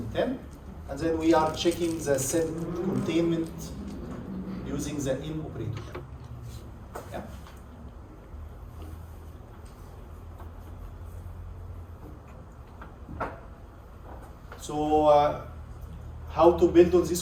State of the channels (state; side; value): identical; both; correlation 1.00